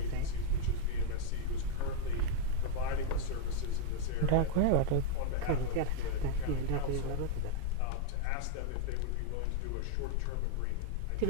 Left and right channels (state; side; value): different; both; correlation 0.00